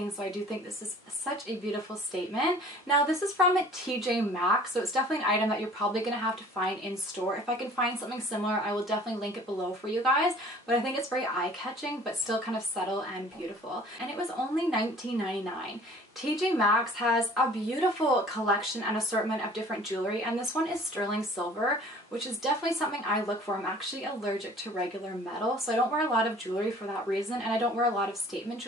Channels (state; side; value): normal; both; correlation 0.50